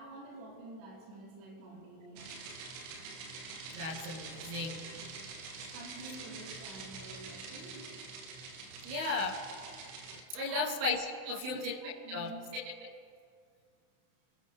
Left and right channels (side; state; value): left; late; 31 ms